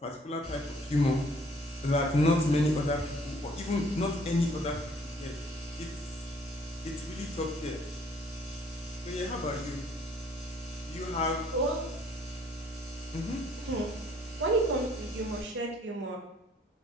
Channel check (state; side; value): normal; both; correlation 0.60